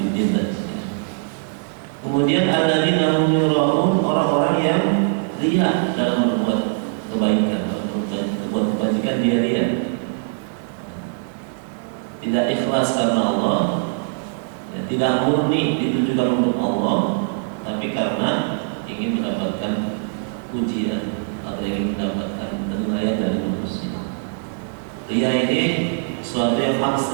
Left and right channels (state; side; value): silent; left; 64 dB below the other